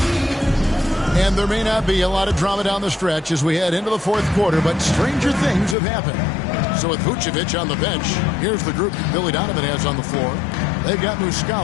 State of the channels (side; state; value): right; drops out; at 5.8 s